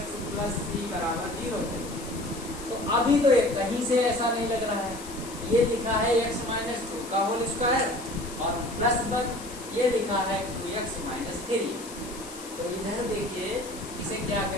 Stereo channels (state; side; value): noise; left; hiss, 15 dB below the sound